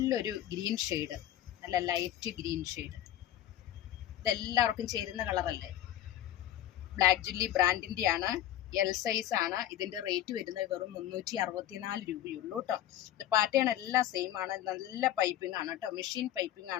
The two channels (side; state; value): right; quieter; 12.4 dB